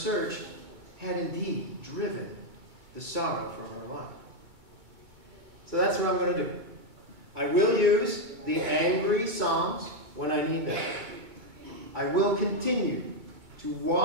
had indeed driven the sorrow from her life. So that's what I'm going to do. I will use the angry psalms when I need them. I will continue to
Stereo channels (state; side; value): late; left; 2.2 ms